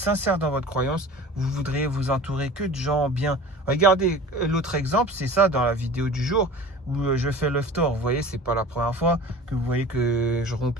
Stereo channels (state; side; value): normal; both; correlation 0.40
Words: dans votre croyance, vous voudriez vous entourer que de gens bien. Regardez, l'autre exemple, c'est ça dans la vidéo du jour où je fais l'iftar. Vous voyez, c'est pas la première fois que vous voyez que je